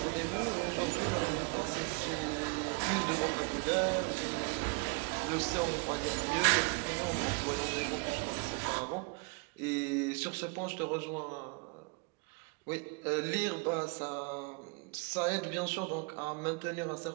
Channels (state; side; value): quieter; left; 32.3 dB